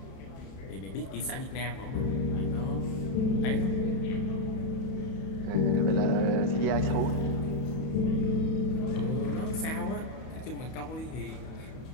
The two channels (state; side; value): late; right; 31 ms